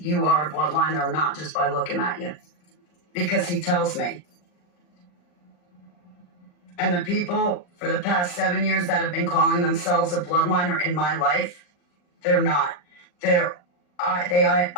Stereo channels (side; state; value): right; late; 40 ms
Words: are a bloodliner or not just by looking at you. Because he tells me. And the people for the past 7 years that have been calling themselves a bloodliner in my life, they're not. They